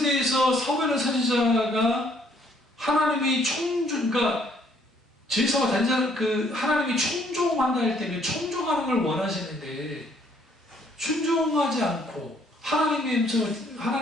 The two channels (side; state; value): both; normal; correlation 0.65